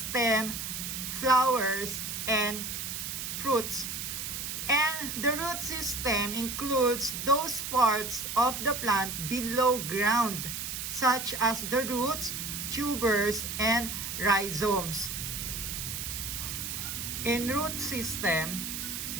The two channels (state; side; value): noise; right; hiss, 5 dB below the sound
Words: flowers, and fruits. And the root system includes those parts of the plant below ground, such as the roots, tubers, and rhizomes. In root system,